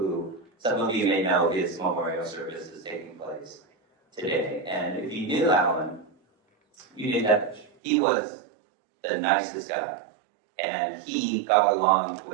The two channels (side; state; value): left; drops out; at 7.7 s